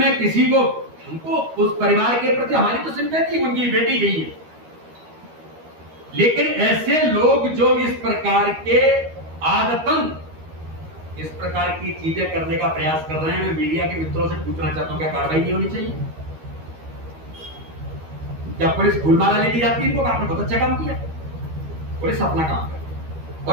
किसी को, हमको उस परिवार के प्रति हमारी तो सिंपैथी, उनकी बेटी गई है, लेकिन ऐसे लोग जो इस प्रकार के आदतन इस प्रकार की चीजें करने का प्रयास कर रहे हैं, मैं मीडिया के मित्रों से पूछना चाहता हूं क्या कार्रवाई नहीं होनी चाहिए? क्या पुलिस फूलमाला लेके जाती है इनको? आपने बहुत अच्छा काम किया, पुलिस अपना काम करे।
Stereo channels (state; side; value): late; left; 13 ms